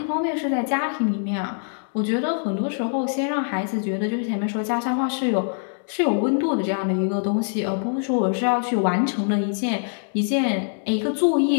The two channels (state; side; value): silent; right; digital silence